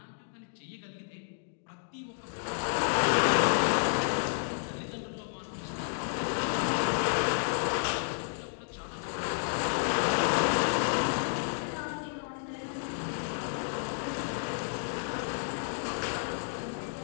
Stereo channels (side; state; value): right; silent; digital silence